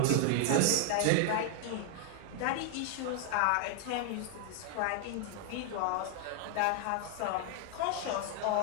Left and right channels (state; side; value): different; both; correlation 0.00